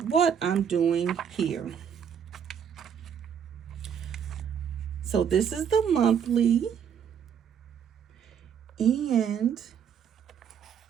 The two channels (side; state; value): left; quieter; 7.9 dB